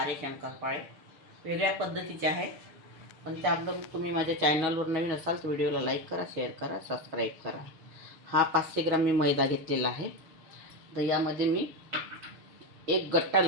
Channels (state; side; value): late; left; 6.2 ms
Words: शंकरपाळे. वेगळ्या पद्धतीचे आहे, पण त्याबद्दल तुम्ही माझ्या चॅनलवर नवीन असाल तर व्हिडिओला लाईक करा, शेअर करा, सबस्क्राईब करा. हा 500 ग्राम मी मैदा घेतलेला आहे. तर यामध्ये मी एक गट्टा